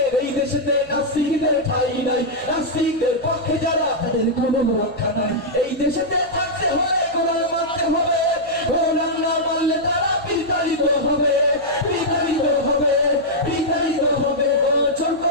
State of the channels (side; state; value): left; noise; hum, 24 dB below the sound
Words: এই দেশেতে নাস্তিকদের ঠাঁই নাই, নাস্তিকদের পক্ষে যারা তাদের কোনো রক্ষা নাই। এই দেশেতে থাকতে হলে কোরআন মানতে হবে, কোরআন না মানলে তারা বিতাড়িত হবে, বিতাড়িত হবে, বিতাড়িত হবে। জোর